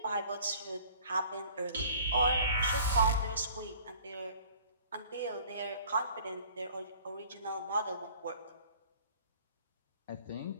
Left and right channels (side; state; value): both; inverted; correlation -0.51